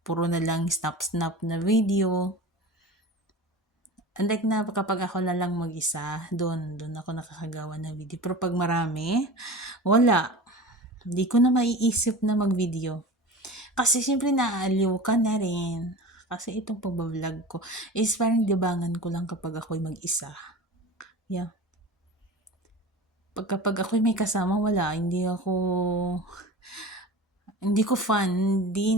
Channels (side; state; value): both; normal; correlation 0.34